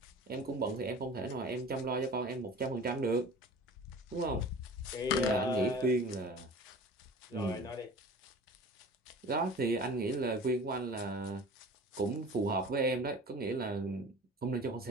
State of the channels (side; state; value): both; normal; correlation 0.41